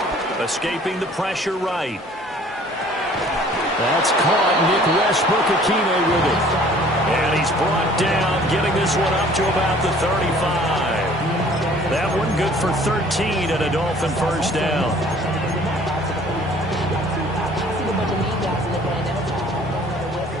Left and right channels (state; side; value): normal; both; correlation 0.53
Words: Escaping the pressure right. That's caught. Nick Westbrook-Ikhine with it. And he's brought down, getting this one up to about the 35. That one good for 13 and a Dolphin first down.